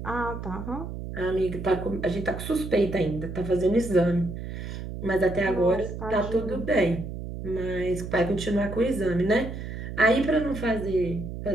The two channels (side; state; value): right; noise; hum, 8 dB below the sound